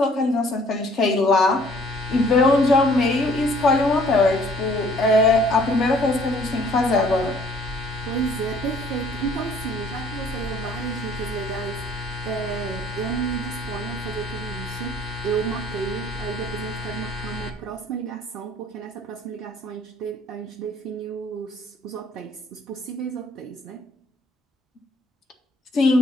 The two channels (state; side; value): normal; both; correlation 0.58